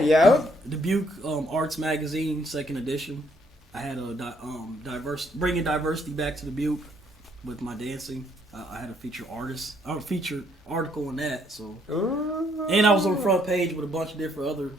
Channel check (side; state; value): both; normal; correlation 0.69